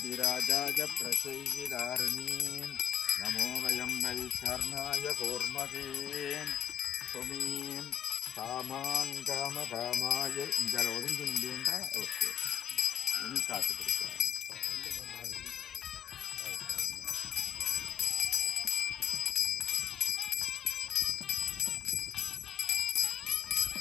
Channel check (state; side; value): quieter; right; 9.7 dB